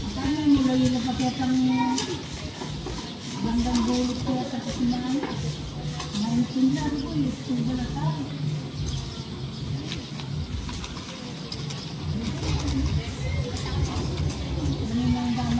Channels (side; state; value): both; identical; correlation 1.00